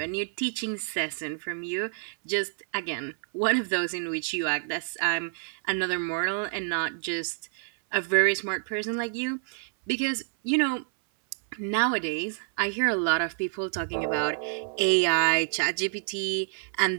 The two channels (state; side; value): silent; left; 58 dB below the other